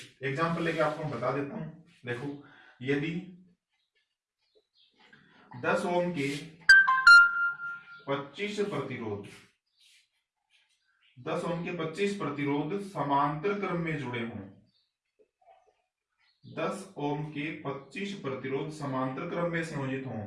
एग्जाम्पल लेके आपको मैं बता देता हूं। देखो, यदि 10 ओम के 25 प्रतिरोध, 10 ओम के 25 प्रतिरोध समांतर क्रम में जुड़े हों, 10 ओम के 25 प्रतिरोध समांतर क्रम में संयोजित हों,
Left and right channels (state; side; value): identical; both; correlation 1.00